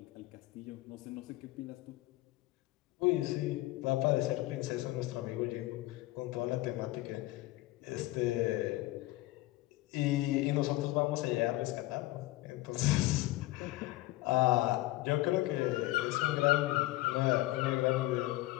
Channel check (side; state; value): right; quieter; 18.3 dB